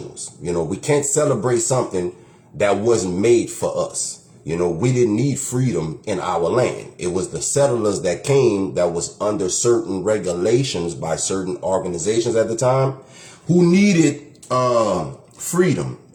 You know, we can't celebrate something that wasn't made for us. You know, we didn't need freedom in our land. It was the settlers that came that was under certain regulations by certain organizations at the time who needed freedom,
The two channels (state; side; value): identical; both; correlation 1.00